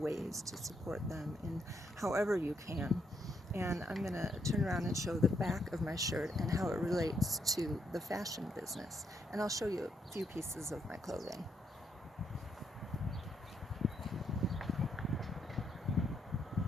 to support them in however you can. And I'm going to turn around and show the back of my shirt and how it relates to the fashion business. And I'll show you a few pieces of my clothing.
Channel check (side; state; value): both; normal; correlation 0.76